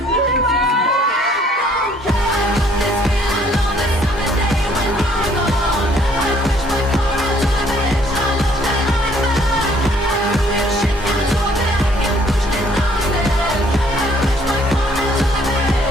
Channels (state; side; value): normal; both; correlation 0.62